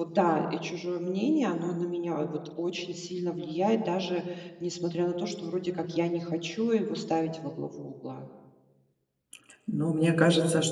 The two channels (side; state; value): both; identical; correlation 1.00